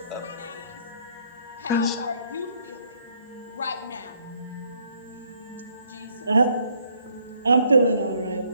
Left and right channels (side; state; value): both; inverted; correlation -0.67